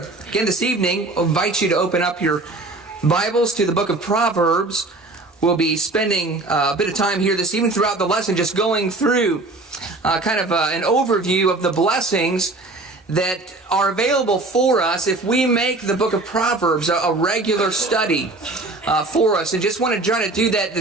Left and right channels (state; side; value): quieter; left; 3.1 dB